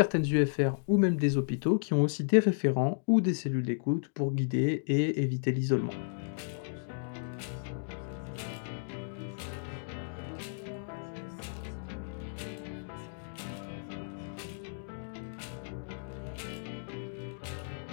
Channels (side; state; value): right; silent; digital silence